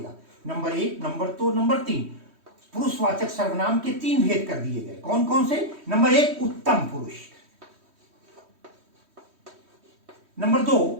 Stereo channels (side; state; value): left; late; 3.1 ms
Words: Number 1, number 2, number 3। पुरुषवाचक सर्वनाम के 3 भेद कर दिए गए। कौन कौन से? नंबर 1 उत्तम पुरुष, नंबर 2